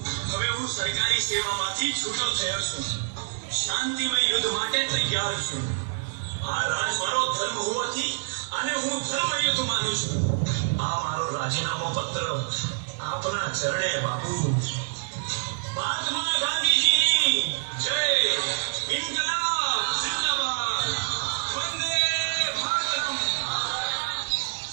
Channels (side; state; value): left; silent; digital silence